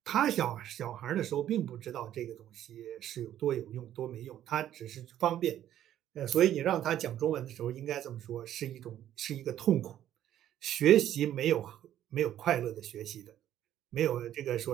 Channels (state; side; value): quieter; left; 11.7 dB